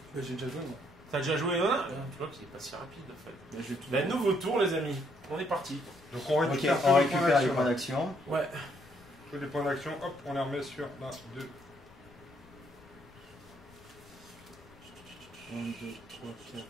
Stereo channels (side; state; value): left; noise; rumble, 24 dB below the sound